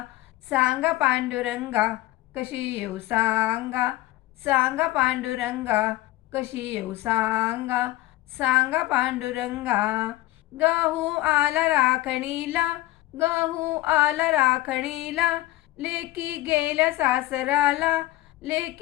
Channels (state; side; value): quieter; right; 17.0 dB